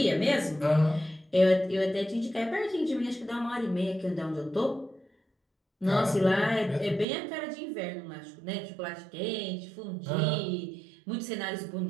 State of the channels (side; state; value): left; drops out; at 7.1 s